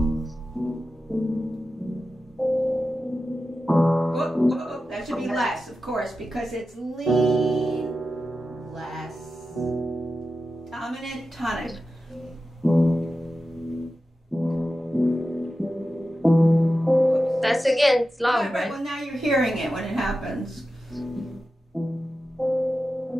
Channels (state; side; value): normal; both; correlation 0.92